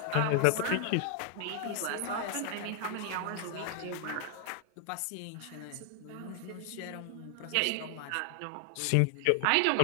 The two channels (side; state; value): both; different; correlation 0.00